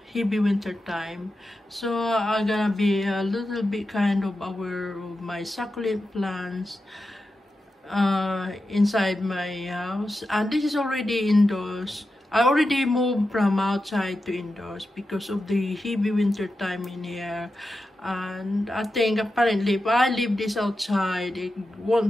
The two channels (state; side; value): normal; both; correlation 0.90